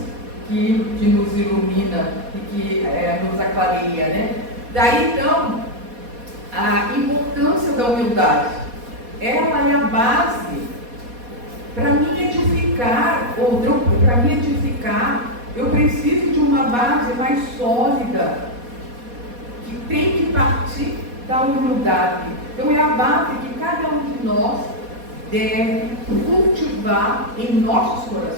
que nos ilumina e que nos aclareia, né? Daí, então, a importância da humildade. Ela é a base para mim edificar, eu preciso de uma base mais sólida, que tem que partir da humildade. Então é a base que cada um de nós deve cultivar em nossos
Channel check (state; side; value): late; left; 4.2 ms